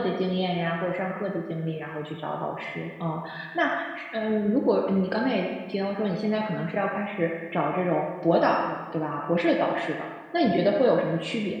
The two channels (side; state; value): both; identical; correlation 1.00